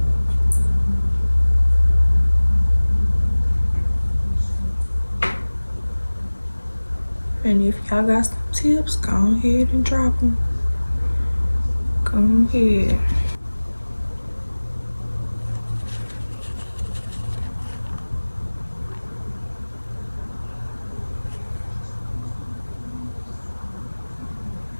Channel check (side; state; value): both; inverted; correlation -1.00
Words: And if y'all got some tips, go ahead and drop them. Go ahead.